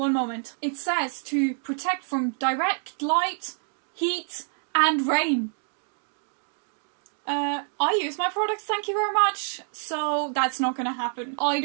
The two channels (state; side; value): silent; left; 57 dB below the other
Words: moment. It says to protect from direct light, heat, and rain. I use my products, thank you very much, so that's not gonna happen. I